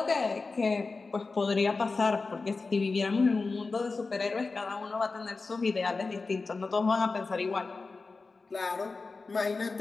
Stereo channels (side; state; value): right; quieter; 4.0 dB